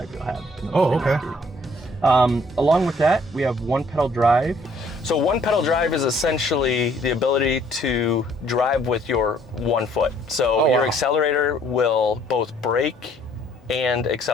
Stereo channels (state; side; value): normal; both; correlation 0.62